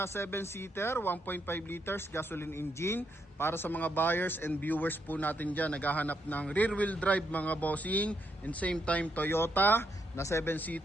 7-seater, 1.5 liters gasoline engine. Para sa mga buyers and viewers po natin dyan, naghahanap ng rear wheel drive mga bossing, and same time Toyota na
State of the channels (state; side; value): normal; both; correlation 0.78